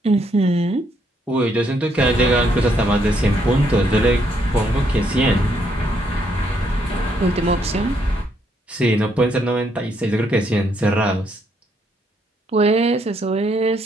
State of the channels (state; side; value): normal; both; correlation 0.73